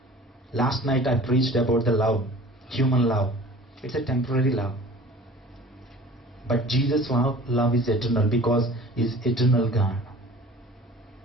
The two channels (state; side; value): normal; both; correlation 0.44